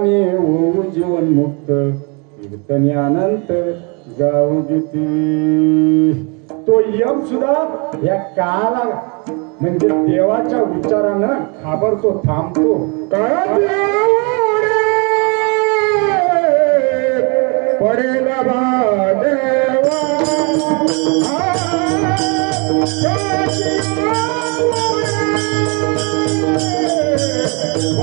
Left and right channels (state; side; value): quieter; left; 32.9 dB